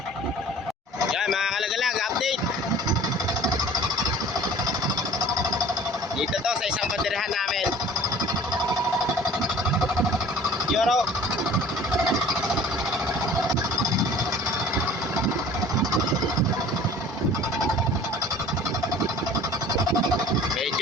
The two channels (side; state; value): both; normal; correlation 0.47